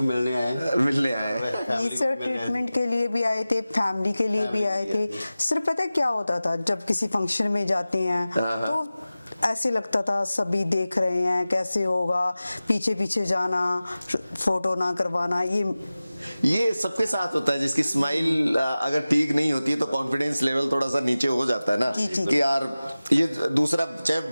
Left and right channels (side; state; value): both; inverted; correlation -0.96